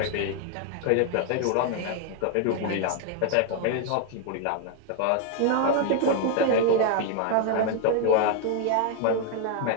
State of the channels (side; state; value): both; different; correlation 0.01